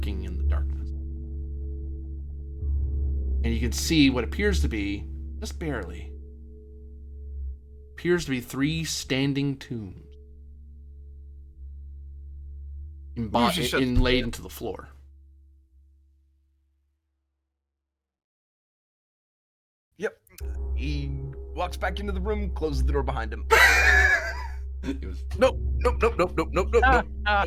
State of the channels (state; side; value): identical; both; correlation 1.00